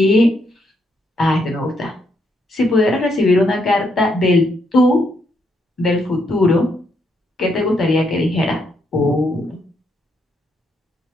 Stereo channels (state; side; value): normal; both; correlation 0.77